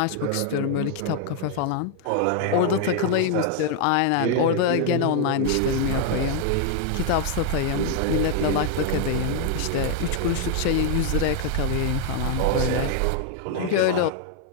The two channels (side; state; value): both; different; correlation 0.00